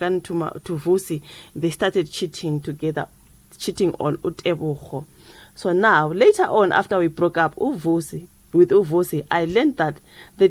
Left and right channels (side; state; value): both; identical; correlation 1.00